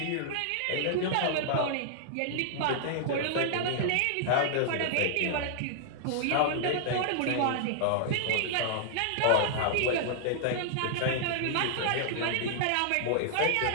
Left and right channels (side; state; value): both; different; correlation -0.01